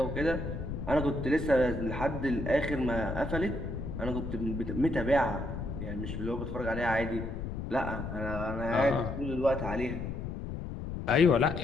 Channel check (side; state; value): left; noise; rumble, 6 dB below the sound